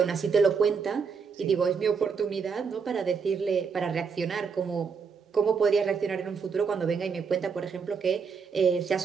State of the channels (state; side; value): quieter; left; 5.8 dB